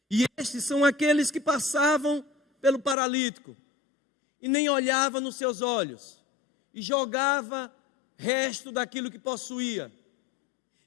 E estes são aqueles que passavam pelo paralítico e nem olhava nos seus olhos e jogava resto daquilo que possuía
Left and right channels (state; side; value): drops out; right; at 3.0 s